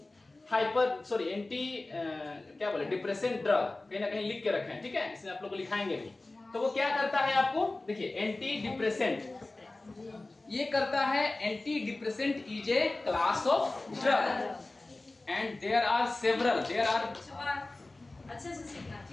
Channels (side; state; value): right; quieter; 3.0 dB